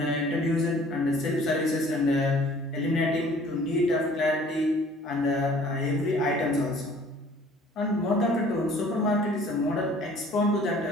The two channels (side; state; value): both; normal; correlation 0.53